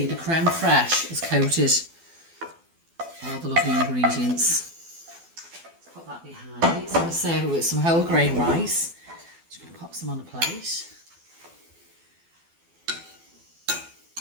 the creme fraiche is coated all the lovely ingredients. Let's put that behind me. So I'm going to serve it with some whole grain rice. Just going to pop some on a plate.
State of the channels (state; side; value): late; left; 12 ms